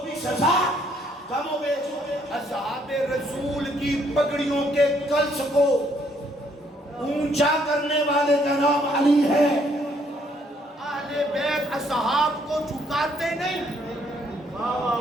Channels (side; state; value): both; normal; correlation 0.68